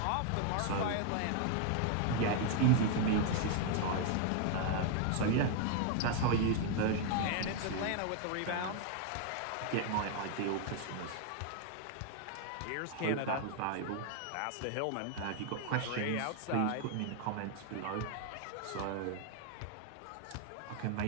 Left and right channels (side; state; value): both; different; correlation 0.00